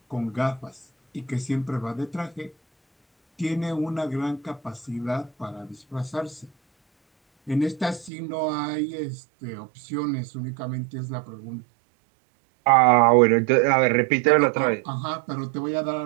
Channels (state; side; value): drops out; left; at 8.1 s